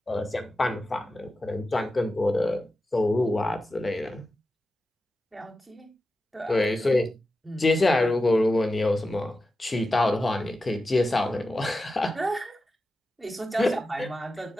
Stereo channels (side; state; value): both; normal; correlation 0.92